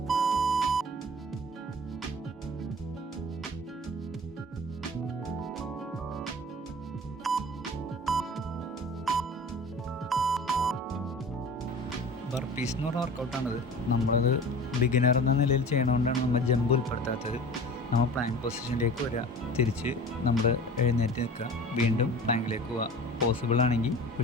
ബർപ്പീസ് എന്ന് പറഞ്ഞ വർക്കൗട്ടാണിത്. നമ്മളത് ബിഗിനർ എന്ന നിലയിൽ ചെയ്യണതുകൊണ്ടാണ് നമ്മൾ ജമ്പ് ഉൾപ്പെടുത്താത്തത്. നമ്മൾ പ്ലാങ്ക് പൊസിഷനിലേക്ക് വരിക, തിരിച്ച് നമ്മൾ എഴുന്നേറ്റ് നിൽക്കുക, വീണ്ടും പ്ലാങ്കിലേക്ക് പോവുക, പോസിബിൾ ആണെങ്കിൽ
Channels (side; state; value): both; normal; correlation 0.40